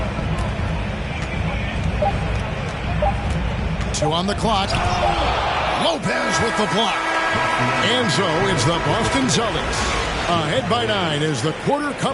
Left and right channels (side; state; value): both; identical; correlation 1.00